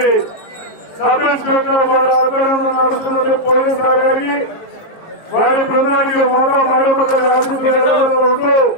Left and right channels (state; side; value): late; right; 19 ms